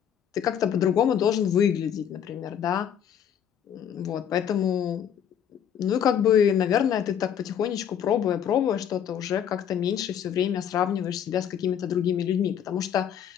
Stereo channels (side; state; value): right; quieter; 8.9 dB